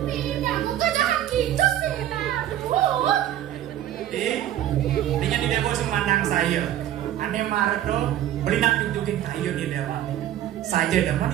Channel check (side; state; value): left; quieter; 12.1 dB